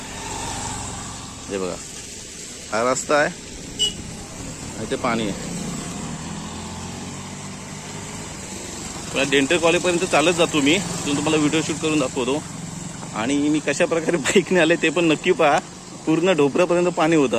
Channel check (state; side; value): identical; both; correlation 1.00